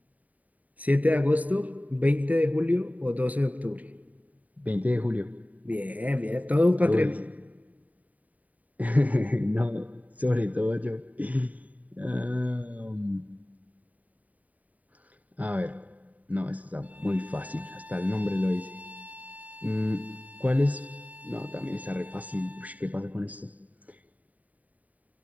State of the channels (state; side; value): late; left; 0.073 ms